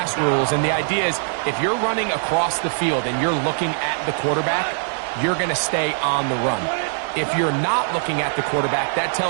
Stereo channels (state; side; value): silent; left; digital silence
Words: rules. And the idea is if you're running across the field and you're looking at the quarterback, you're going to stay on the run. If you're not looking at the quarterback, that